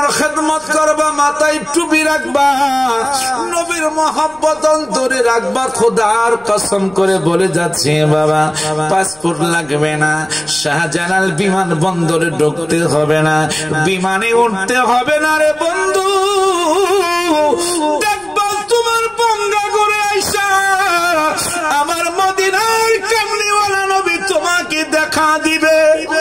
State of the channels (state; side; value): noise; left; rumble, 27 dB below the sound